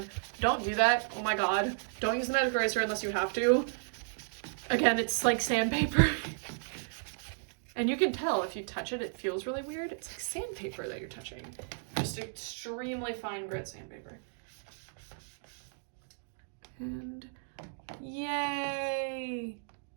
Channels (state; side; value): silent; left; digital silence